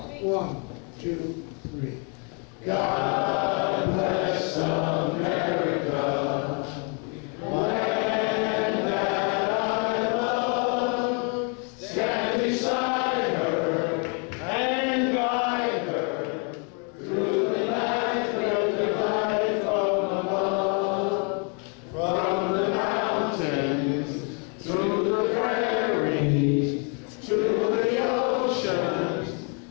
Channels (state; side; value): quieter; right; 37.2 dB